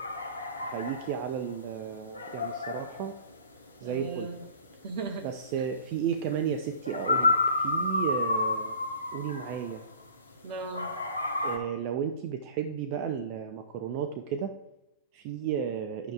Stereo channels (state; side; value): inverted; both; correlation -0.42